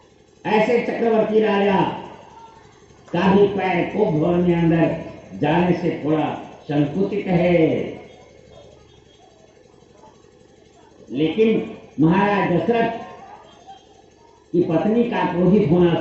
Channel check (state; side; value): identical; both; correlation 1.00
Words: ऐसे चक्रवर्ती राजा का भी पैर कोप भवन में अंदर जाने से थोड़ा संकुचित है। लेकिन महाराज दशरथ की पत्नी का क्रोधित होना